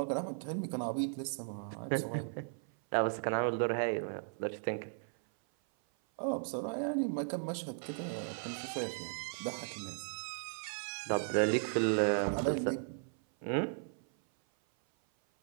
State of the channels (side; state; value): left; silent; 54 dB below the other